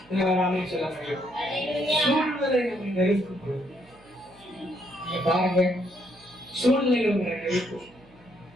ராமே சொல்ல முடியும். சூழ்நிலை நம்மை நெருக்கும் பொழுது நீங்க பாருங்க, சூழ்நிலைகள் உங்களை நெருக்கும்.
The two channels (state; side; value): noise; right; hum, 29 dB below the sound